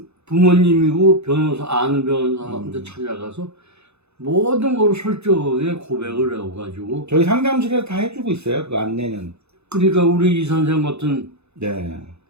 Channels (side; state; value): left; late; 0.80 ms